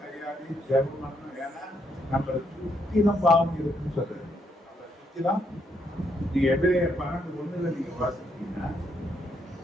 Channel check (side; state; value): both; normal; correlation 0.75